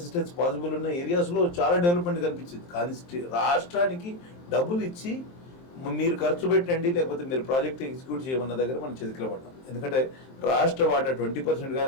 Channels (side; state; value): right; late; 23 ms